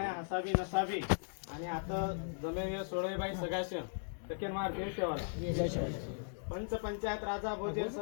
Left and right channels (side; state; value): right; silent; digital silence